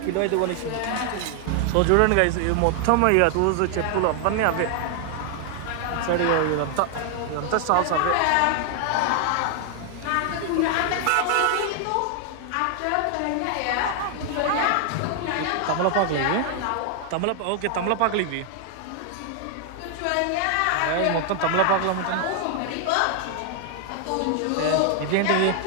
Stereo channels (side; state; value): both; different; correlation 0.00